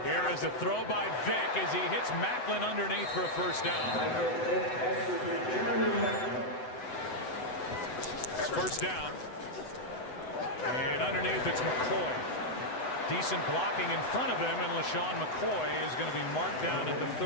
Here is a throw by Vic as he hits Macklin underneath for a first down. It's first down. And underneath it's McCoy. Decent blocking in front of him, and LaShawn McCoy is going to be marked down at the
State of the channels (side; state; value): right; late; 7.9 ms